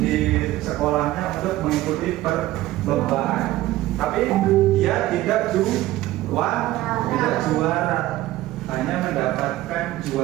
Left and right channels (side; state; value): left; quieter; 16.0 dB